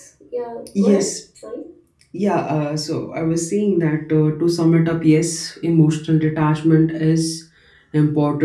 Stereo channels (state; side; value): identical; both; correlation 1.00